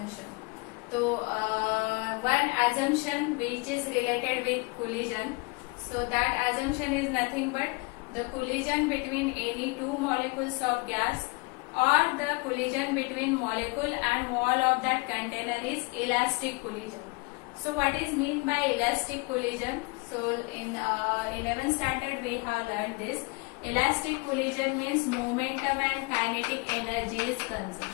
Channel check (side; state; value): right; quieter; 28.5 dB